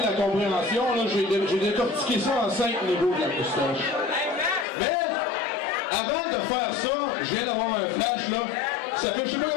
compréhension. J'ai décortiqué ça en 5 niveaux de la moustache. Mais, avant de faire ça, je viens d'avoir un flash, là. Ça fait je sais pas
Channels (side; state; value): right; drops out; at 4.7 s